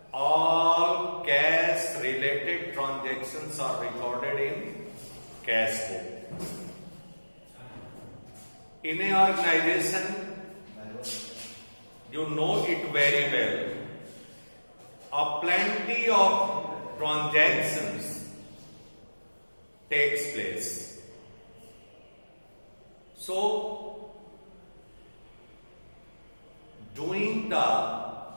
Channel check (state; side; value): inverted; both; correlation -1.00